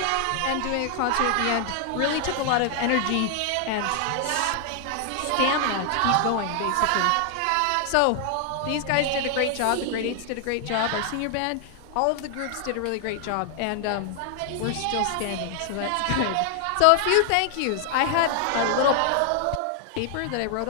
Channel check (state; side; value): different; both; correlation 0.00